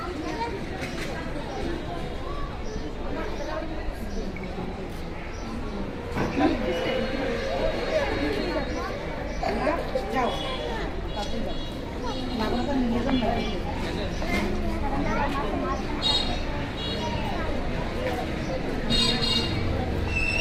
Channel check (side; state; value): both; identical; correlation 1.00